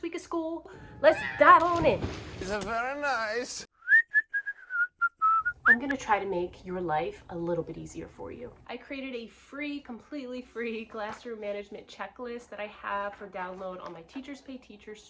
week of school, let's dive on in. It's very nice. I'm gonna try to make your life a little bit easier for you. I created a free, completely free classroom management checklist that I have for download on my Teachers Pay Teachers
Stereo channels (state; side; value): identical; both; correlation 1.00